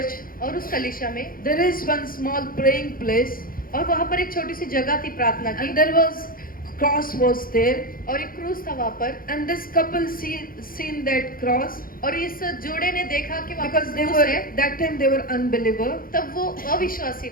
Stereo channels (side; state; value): right; late; 0.41 ms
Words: और उस कलीसिया में there is one small praying place, और वहाँ पर एक छोटी सी जगह थी प्रार्थना की, and there was cross was there, और एक क्रूस था वहाँ पर। and this couple seen that cross और इस जोड़े ने देखा कि वहाँ because पर they क्रूस were है। that time they were unbeliever, तब वो अविश्वासी